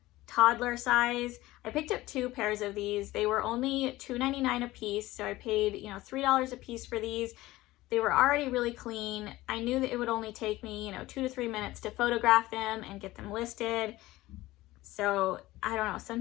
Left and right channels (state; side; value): quieter; right; 17.8 dB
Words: toddler size. I picked up 2 pairs of these. They were only $2.99 a piece, so I paid $3 a piece for these. They were already really clean. I knew that it would only take me 2 to 3 minutes to photograph them and get them listed. So I don't know,